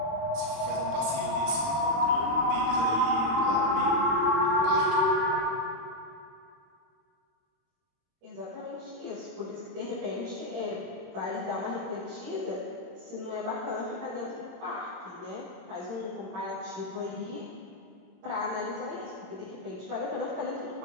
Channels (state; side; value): late; left; 26 ms